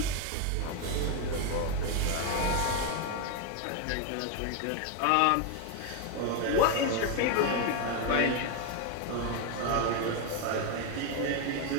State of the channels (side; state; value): both; different; correlation 0.01